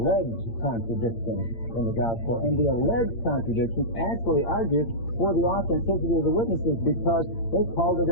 contradictions in the gospel, and the alleged contradictions actually argue for the authenticity of the witnesses because they called it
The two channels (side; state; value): right; late; 8.8 ms